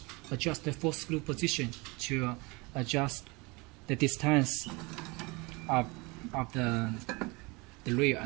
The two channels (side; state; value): left; quieter; 26.2 dB